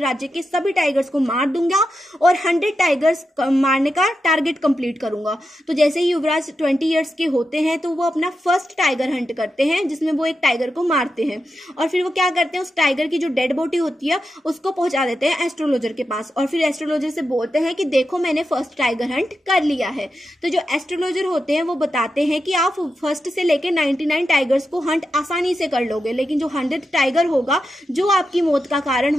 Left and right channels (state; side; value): normal; both; correlation 0.88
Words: के सभी टाइगर्स को मार दूंगा और 100 टाइगर्स मारने का टारगेट कंप्लीट करूंगा। तो जैसे ही युवराज 20 ईयर्स के होते हैं तो वो अपना फर्स्ट टाइगर हंट करते हैं, जिसमें वो एक टाइगर को मारते हैं, और फिर वो क्या करते हैं, उस टाइगर की जो डेड बॉडी होती है उसको पहुंचा देते हैं एस्ट्रोलॉजर के पास, और फिर एस्ट्रोलॉजर से बोलते हैं कि देखो मैंने फर्स्ट टाइगर हंट कर लिया है। तो जो एस्ट्रोलॉजर होते हैं वो बताते हैं कि आप फर्स्ट से लेकर 99 टाइगर्स को हंट आसानी से कर लोगे, लेकिन जो 100th टाइगर होगा जो आपकी मौत का कारण